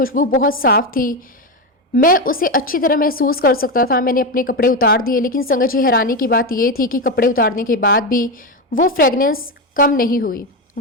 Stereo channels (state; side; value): normal; both; correlation 0.13